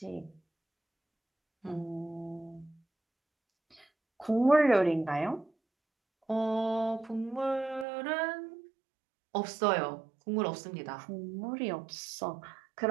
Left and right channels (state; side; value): drops out; left; at 7.9 s